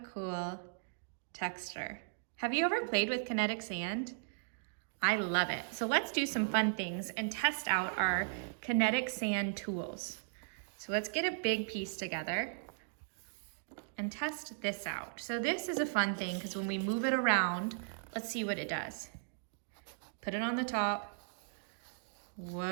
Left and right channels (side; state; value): left; silent; digital silence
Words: texture. Have you ever played with kinetic sand? I love it. So let's do some fun things and test out our kinetic sand tools. So let's get a big piece together and test this out. So this is a fun thing because when we move it around, let's see what it does. Put it on the top.